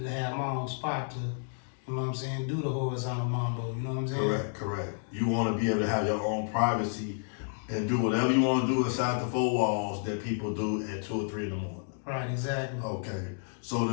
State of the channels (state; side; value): silent; right; digital silence